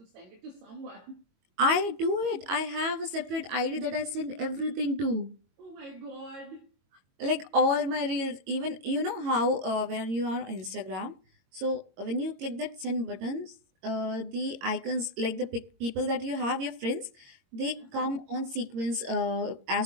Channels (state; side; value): late; left; 22 ms